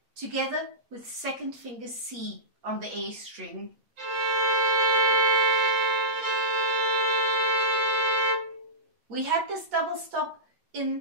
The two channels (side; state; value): left; late; 8.3 ms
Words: together with second finger C on the A string. We had this double stop